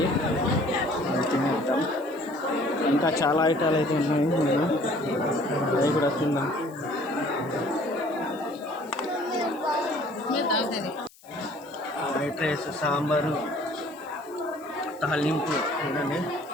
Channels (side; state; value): left; noise; hiss, 26 dB below the sound